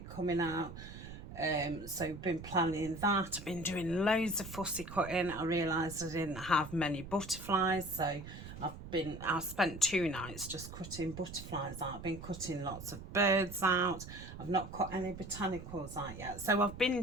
coming out. So I've been planning that. I've been doing loads of fussy cutting. I realised I didn't have many butterflies, so I've spent 2 nights just cutting butterflies out. I've been cutting lots of birds out. I've not cut any botanicals out yet. So I've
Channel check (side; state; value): right; noise; rumble, 12 dB below the sound